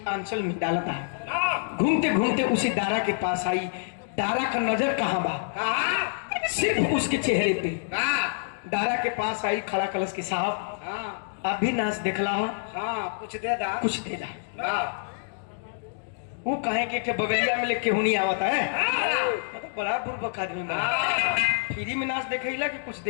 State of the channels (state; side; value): silent; right; digital silence